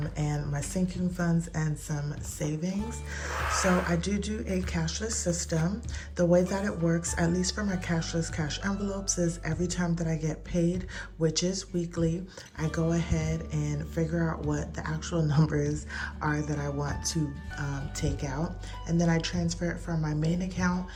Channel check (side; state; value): both; identical; correlation 1.00